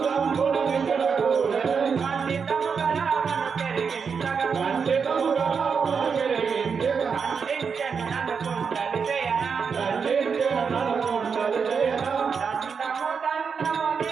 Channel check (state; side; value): quieter; left; 5.9 dB